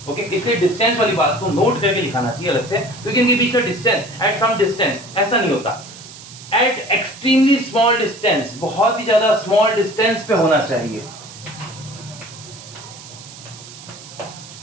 ओके, इसलिए डिस्टेंस वाली बात को नोट करके लिखाना चाहिए अलग से, क्योंकि इनके बीच का डिस्टेंस एट सम डिस्टेंस ऐसा नहीं होता, एट एक्सट्रीमली स्मॉल डिस्टेंस, बहुत ही ज्यादा स्मॉल डिस्टेंस पे होना चाहिए,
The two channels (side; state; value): right; noise; hiss, 17 dB below the sound